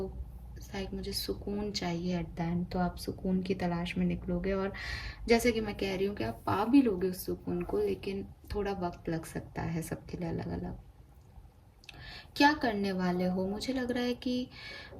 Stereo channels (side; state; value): both; identical; correlation 1.00